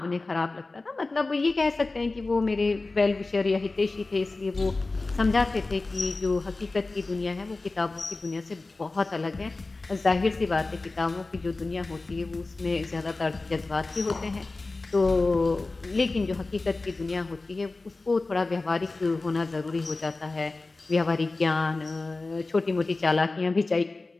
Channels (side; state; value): right; quieter; 3.4 dB